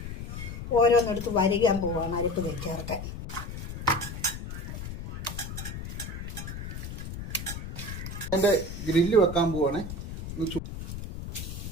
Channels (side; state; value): left; noise; rumble, 8 dB below the sound